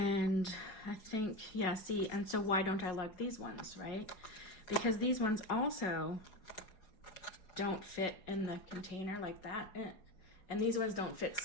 I think, yeah, see, and so why don't I like these ones, right? Because these ones also don't fit in the container like that. And these ones don't fit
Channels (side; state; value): right; late; 4.8 ms